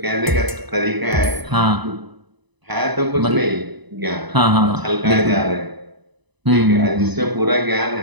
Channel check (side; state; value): left; late; 1.0 ms